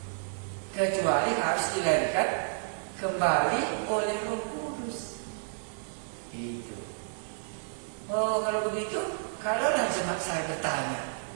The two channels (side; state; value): left; silent; digital silence